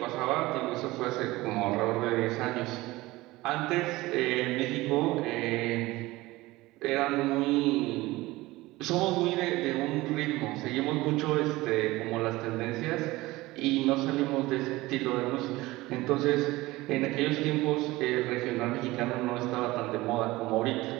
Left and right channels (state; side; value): quieter; left; 19.5 dB